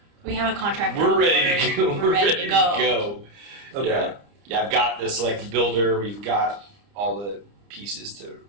We have a contract. we're on ready to board. go. We're ready to go. Okay. Yeah. I've got the select builder. We've got all the pieces to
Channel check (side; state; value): left; late; 30 ms